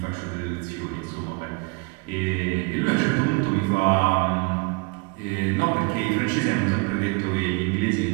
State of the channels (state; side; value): quieter; left; 29.0 dB